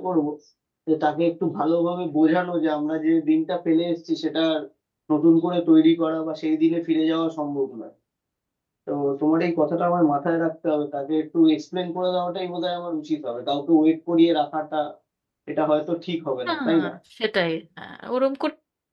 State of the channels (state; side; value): identical; both; correlation 1.00